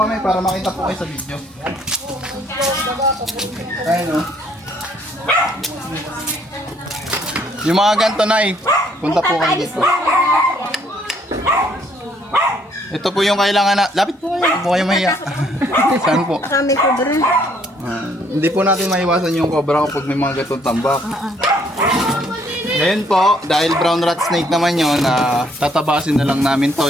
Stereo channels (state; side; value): normal; both; correlation 0.66